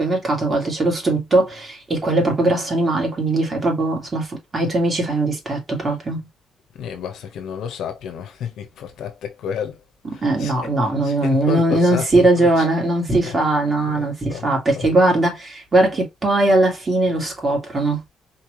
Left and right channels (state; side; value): normal; both; correlation 0.72